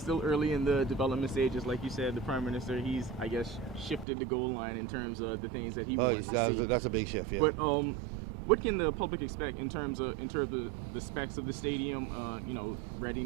still early in the development stages. Like you said, the Prime Minister, he's, I guess, shifted the goal line in terms of the things that he wants to see. That's a big shift, yeah. But what can the public expect in terms of the specs of the stadium,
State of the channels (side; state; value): left; drops out; at 4.0 s